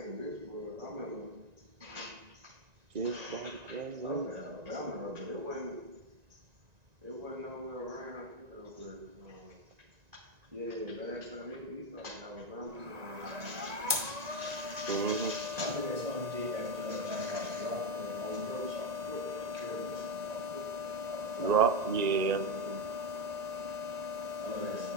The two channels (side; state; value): left; late; 1.9 ms